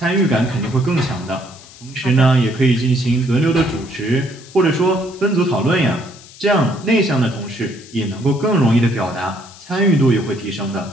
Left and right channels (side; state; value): left; noise; hiss, 21 dB below the sound